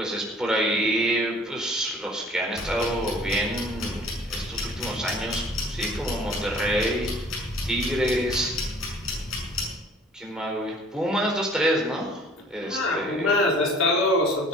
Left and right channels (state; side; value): normal; both; correlation 0.52